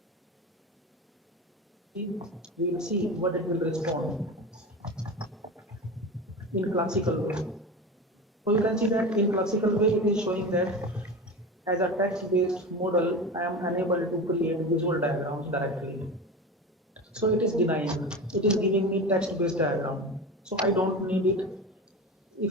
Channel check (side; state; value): both; normal; correlation 0.28